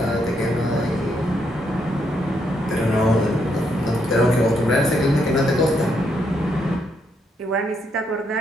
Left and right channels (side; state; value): both; normal; correlation 0.76